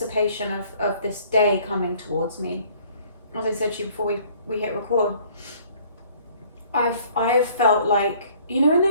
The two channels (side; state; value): both; inverted; correlation -0.57